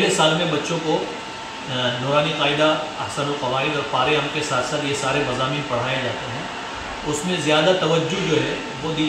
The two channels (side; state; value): both; identical; correlation 1.00